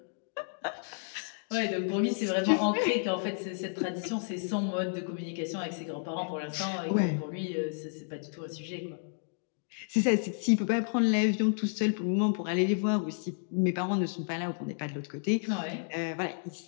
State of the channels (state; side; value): silent; right; digital silence